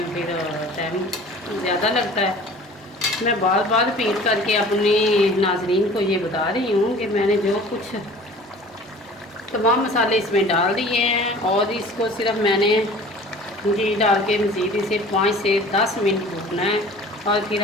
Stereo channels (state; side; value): normal; both; correlation 0.45